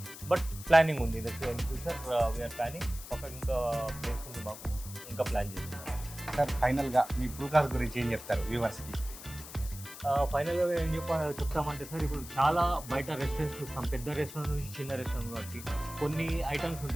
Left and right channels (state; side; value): noise; left; hiss, 13 dB below the sound